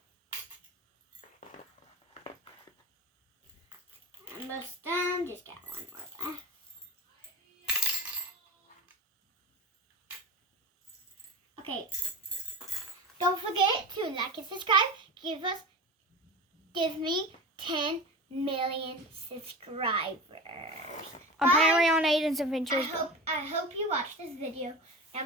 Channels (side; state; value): both; normal; correlation 0.29